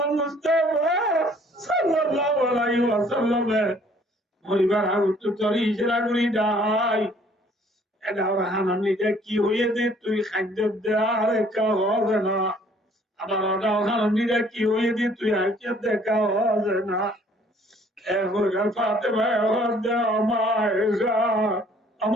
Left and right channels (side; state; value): both; normal; correlation 0.58